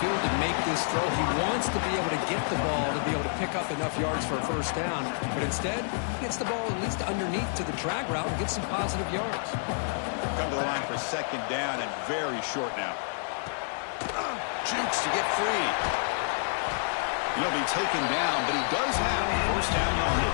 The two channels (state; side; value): silent; right; digital silence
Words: to make this throw. He wants to be able to get the ball to be able to pick up enough yards for a first down. But instead, he gets the ball at least underneath to the drag route and gets some positive yards. Come to the line for second down and very short now. Jukes to get free. He'll be taken down, but he does have first down